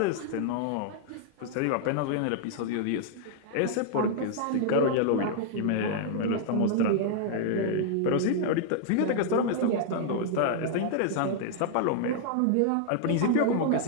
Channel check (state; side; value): different; both; correlation -0.01